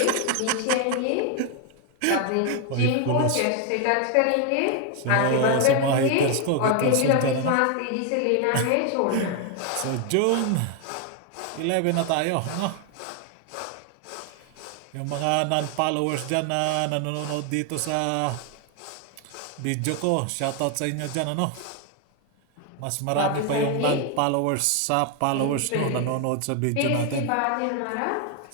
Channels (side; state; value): both; different; correlation 0.01